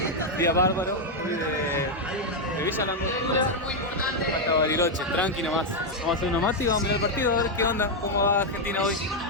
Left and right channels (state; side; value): normal; both; correlation 0.01